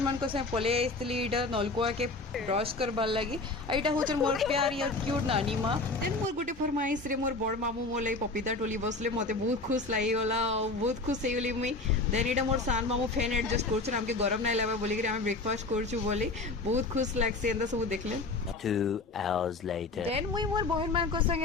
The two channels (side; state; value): right; quieter; 3.4 dB